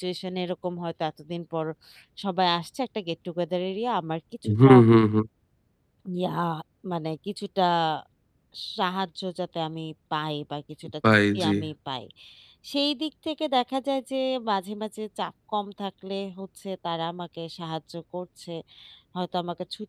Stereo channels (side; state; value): both; identical; correlation 1.00